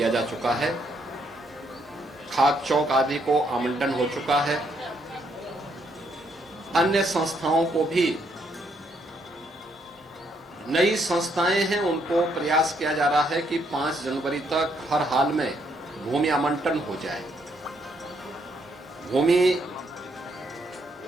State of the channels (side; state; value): both; normal; correlation 0.73